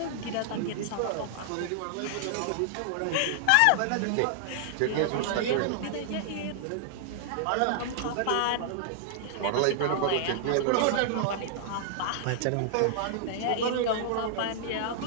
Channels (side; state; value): both; different; correlation -0.01